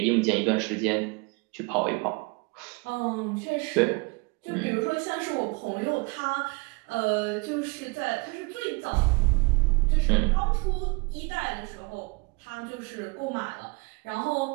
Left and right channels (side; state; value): left; quieter; 29.0 dB